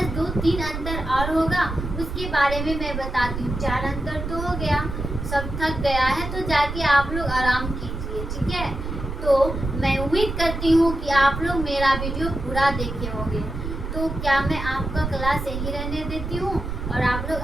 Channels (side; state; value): right; noise; rumble, 5 dB below the sound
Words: 2-3 अंतर और होगा, उसके बारे में मैं बताती हूँ। 4 अंतर तो हो गया, सब थक गया है तो जाके आप लोग आराम कीजिए। ठीक है, तो मैं उम्मीद करती हूँ कि आप लोग मेरा वीडियो पूरा देखे होंगे। तो क्या मैं आपका क्लास यही रहने देती हूँ, और आप लोग